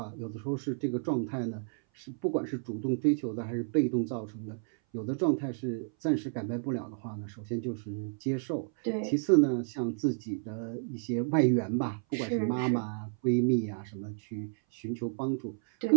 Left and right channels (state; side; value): silent; left; 57 dB below the other